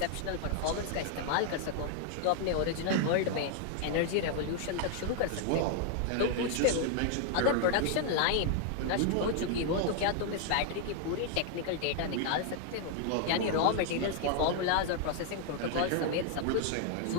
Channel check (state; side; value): different; both; correlation 0.00